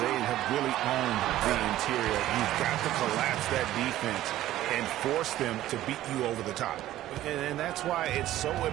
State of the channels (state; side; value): quieter; left; 14.1 dB